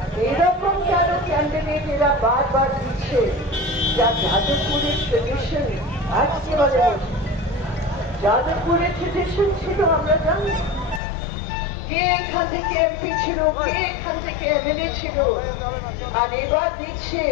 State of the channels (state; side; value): drops out; right; at 11.0 s